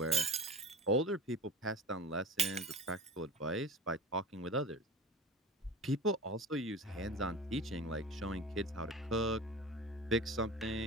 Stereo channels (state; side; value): normal; both; correlation 0.35